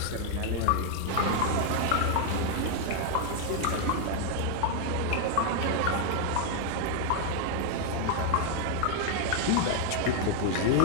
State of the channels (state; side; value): different; both; correlation 0.00